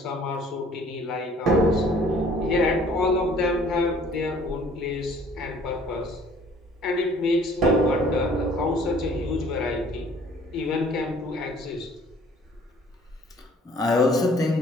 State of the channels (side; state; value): both; normal; correlation 0.55